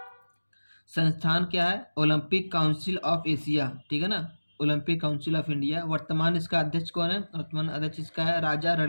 संस्थान क्या है? ओलंपिक काउंसिल ऑफ एशिया, ठीक है ना। Olympic council of India. वर्तमान इसका अध्यक्ष कौन है? वर्तमान अध्यक्ष इसका है राजा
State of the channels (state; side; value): inverted; both; correlation -1.00